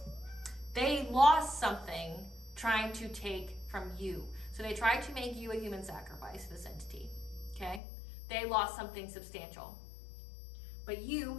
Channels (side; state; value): right; drops out; at 7.8 s